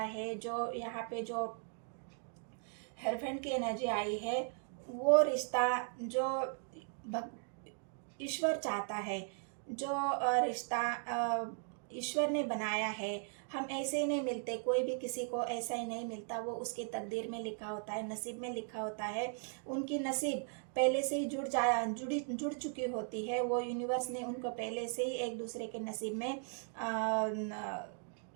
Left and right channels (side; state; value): left; silent; 53 dB below the other